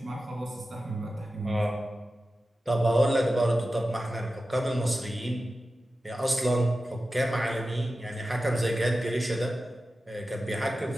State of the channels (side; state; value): both; normal; correlation 0.94